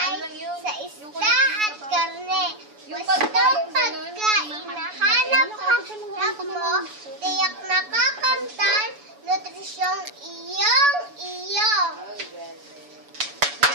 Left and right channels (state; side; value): late; left; 7.0 ms